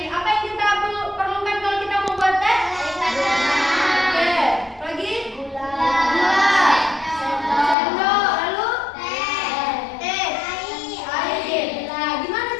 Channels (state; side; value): drops out; right; at 7.8 s